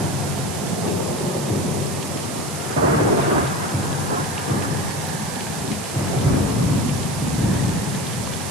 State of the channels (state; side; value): noise; right; hiss, 9 dB below the sound